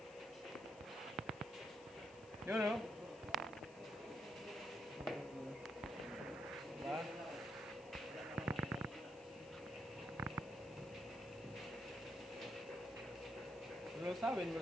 Yun, o. Diba? Lulusawin mo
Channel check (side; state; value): left; noise; hiss, 22 dB below the sound